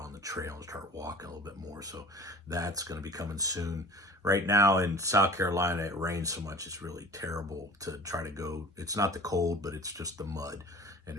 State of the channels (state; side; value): normal; both; correlation 0.43